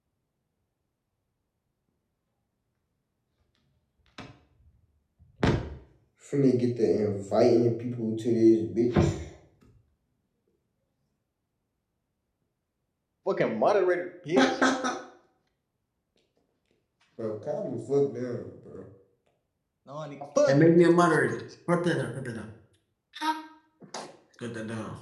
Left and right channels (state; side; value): identical; both; correlation 1.00